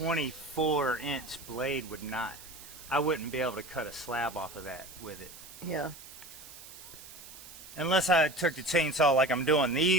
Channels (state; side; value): noise; right; hiss, 16 dB below the sound